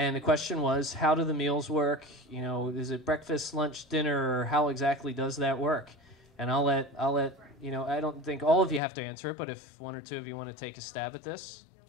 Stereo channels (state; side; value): drops out; right; at 8.8 s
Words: the question was, how do the meals work? Is it breakfast, lunch, dinner, or how exactly does that work? And I'll let, I don't think all of you have to answer it, but if one or two of you want to take a stab at this,